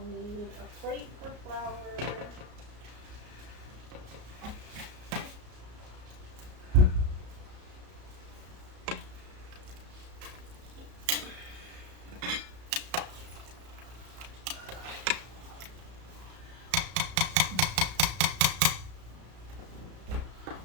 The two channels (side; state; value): left; late; 33 ms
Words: need a plate for flour.